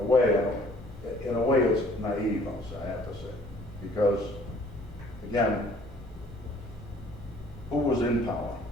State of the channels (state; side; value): normal; both; correlation 0.57